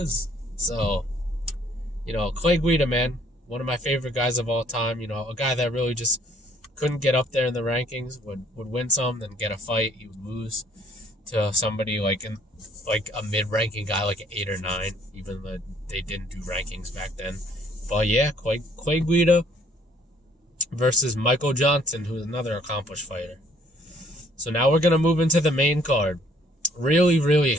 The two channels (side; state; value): both; normal; correlation 0.62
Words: So, Clay Guida, man, one of my favorite guys of all time. A guy that really just couldn't get up there in the rankings, would win some, then get a fight, he would lose. to somebody like a mid-ranking guy, like an 8 or 9, even though they didn't do rankings back then. But yeah, Clay Guida versus Michael Johnson, who's another accomplished fighter. So now we're going to move into the main card. Really, really